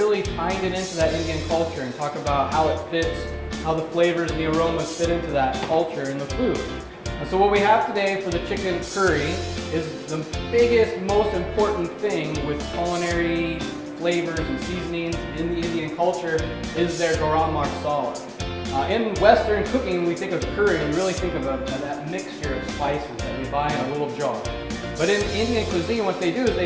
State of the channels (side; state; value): both; identical; correlation 1.00